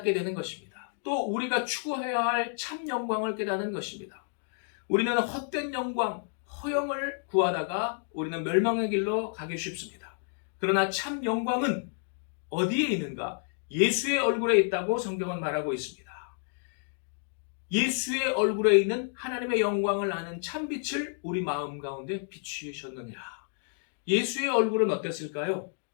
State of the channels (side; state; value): right; silent; 57 dB below the other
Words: 되는 것입니다. 또 우리가 추구해야 할 참 영광을 깨닫는 것입니다. 우리는 헛된 영광, 허영을 구하다가 우리는 멸망의 길로 가기 쉽습니다. 그러나 참 영광은 어디에 있는가? 예수의 얼굴에 있다고 성경은 말하고 있습니다. 예수의 얼굴에 있는 하나님의 영광을 아는 참빛을 우리 마음 가운데 비추셨느니라. 예수의 얼굴은 어땠을까요?